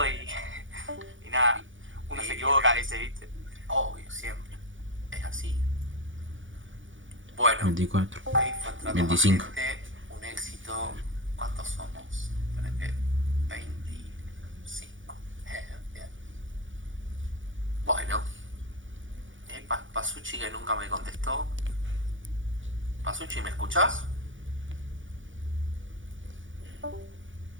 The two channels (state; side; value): late; left; 0.56 ms